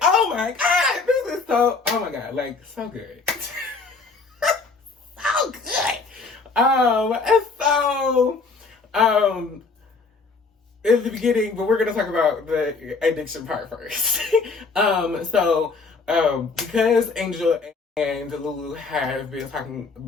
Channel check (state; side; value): quieter; right; 4.3 dB